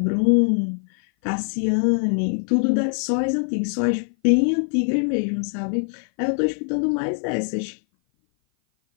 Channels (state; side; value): silent; right; 57 dB below the other